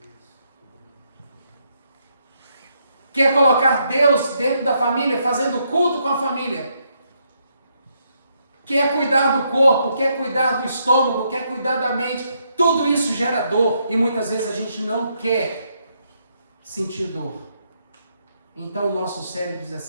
Quer colocar Deus dentro da família, fazendo culto com a família. Quer cuidar do corpo, quer cuidar do estômago, quer cuidar da mente. Tudo isso gera dor e muitas vezes a gente não quer sentir dor. Então o nosso cérebro diz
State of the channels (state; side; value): inverted; both; correlation -0.76